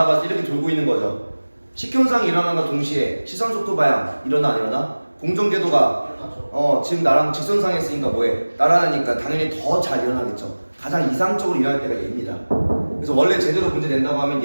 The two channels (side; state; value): both; inverted; correlation -1.00